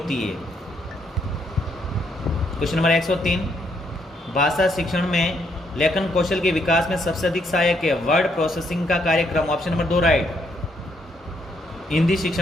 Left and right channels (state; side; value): normal; both; correlation 0.73